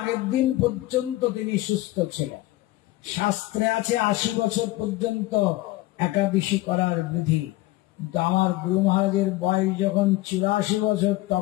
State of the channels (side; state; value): right; quieter; 17.8 dB